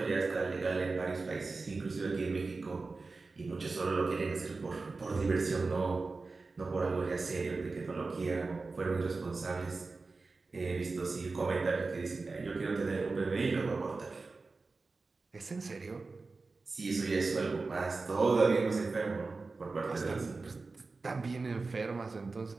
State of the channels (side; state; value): left; quieter; 3.9 dB